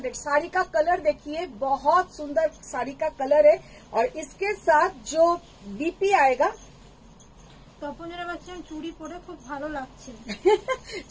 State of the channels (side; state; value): both; identical; correlation 1.00